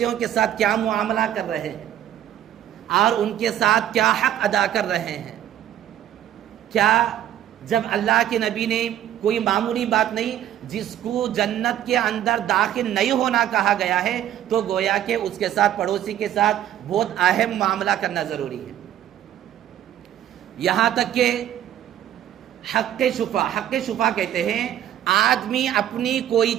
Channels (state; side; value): quieter; left; 11.2 dB